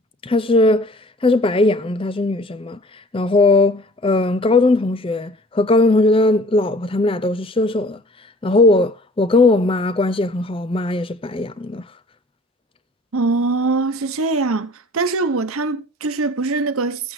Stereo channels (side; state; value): both; normal; correlation 0.50